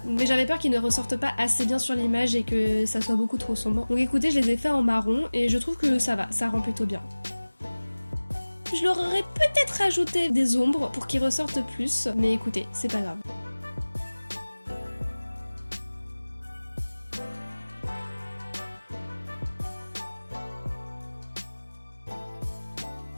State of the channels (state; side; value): inverted; both; correlation -1.00